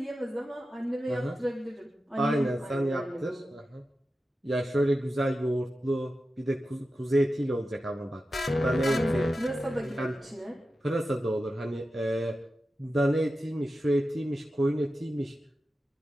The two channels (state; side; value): normal; both; correlation 0.92